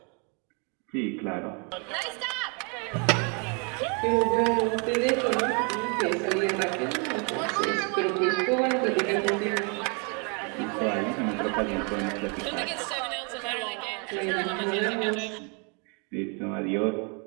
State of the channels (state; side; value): quieter; left; 35.5 dB